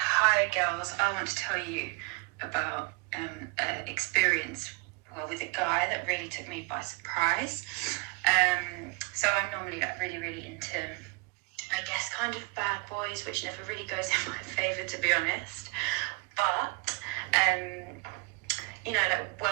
girls, I want to tell you about an experience with a guy that really took me by surprise. So I'm normally like really into, I guess, kind of bad boys, which never really goes in my favour, to be honest. But you know, like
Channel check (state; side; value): quieter; left; 30.3 dB